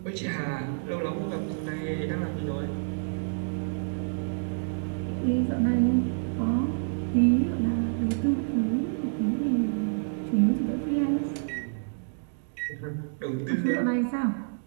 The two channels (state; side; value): silent; left; digital silence